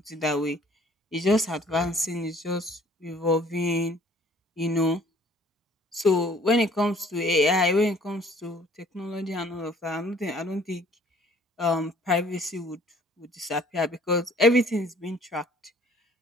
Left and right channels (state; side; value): normal; both; correlation 0.56